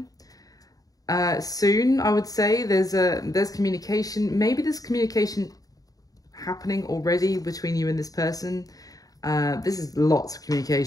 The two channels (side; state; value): right; late; 0.18 ms